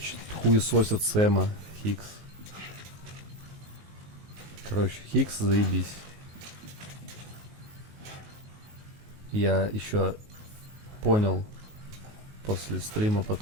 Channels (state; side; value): late; left; 19 ms